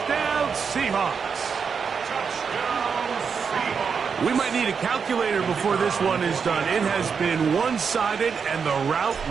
Seahawks. We might need a calculator before this one is done. It has been one-sided, and the route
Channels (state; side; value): quieter; left; 6.1 dB